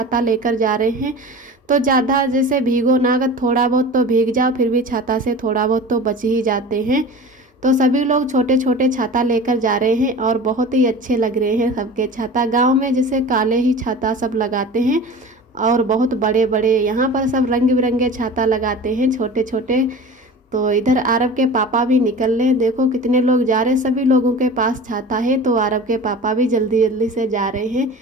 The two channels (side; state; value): both; normal; correlation 0.36